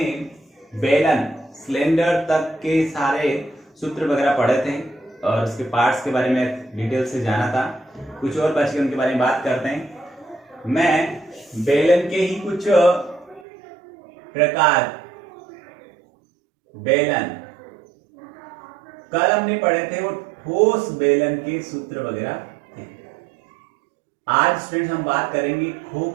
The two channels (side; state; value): left; drops out; at 13.5 s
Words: बेलन सिलेंडर तक के सारे सूत्र वगैरह पढ़े थे और उसके पार्ट्स के बारे में डिटेल से जाना था। कुछ और बच के उनके बारे में बात करते हैं। मैं बेलन के ही कुछ प्रकार बेलन कल हमने पढ़े थे, वो ठोस बेलन के सूत्र वगैरह थे। आज स्टूडेंट हम बात करेंगे